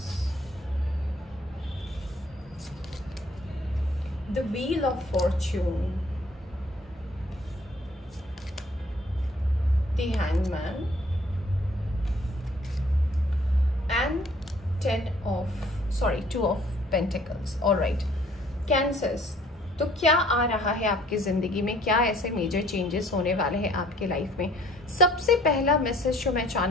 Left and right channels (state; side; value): normal; both; correlation 0.58